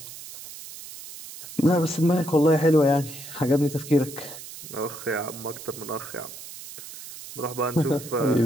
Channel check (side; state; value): right; noise; hiss, 14 dB below the sound